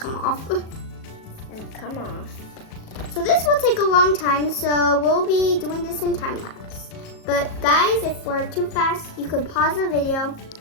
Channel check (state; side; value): late; right; 37 ms